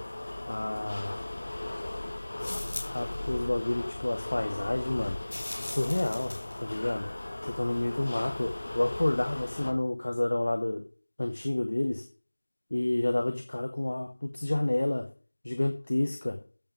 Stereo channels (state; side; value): inverted; both; correlation -1.00